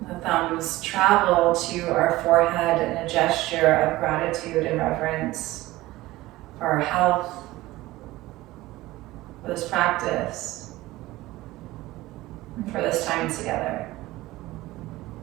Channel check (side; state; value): left; quieter; 18.0 dB